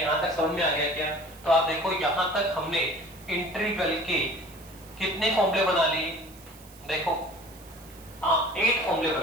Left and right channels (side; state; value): right; noise; hiss, 22 dB below the sound